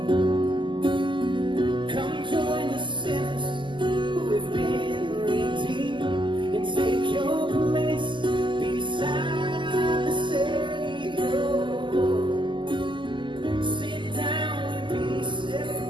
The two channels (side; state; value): left; late; 0.24 ms